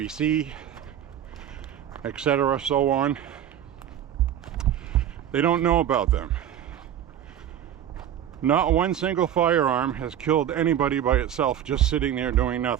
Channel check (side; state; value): left; quieter; 10.4 dB